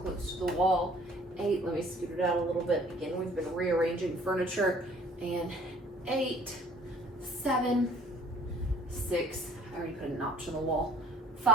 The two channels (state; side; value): normal; both; correlation 0.54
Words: to the wall. 8, let me scoot it out a little bit. Again, we've been rearranging furniture. And 8, 7, 6, I already put a notch on the wall.